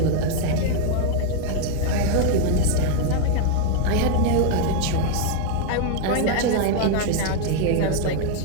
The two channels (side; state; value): both; different; correlation 0.01